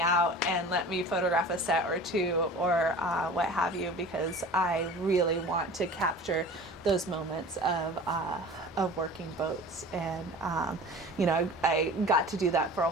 and let me photograph a set or 2 or what have you, because I really want to capture those moments of working boats. And I got to do that for a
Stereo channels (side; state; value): both; normal; correlation 0.40